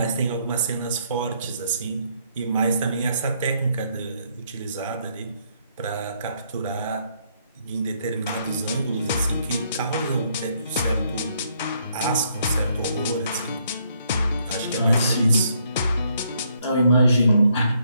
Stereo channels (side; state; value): both; inverted; correlation -0.71